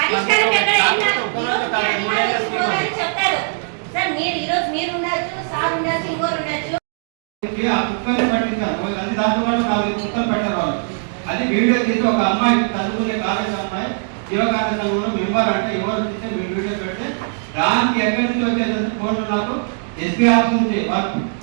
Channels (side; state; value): left; silent; 62 dB below the other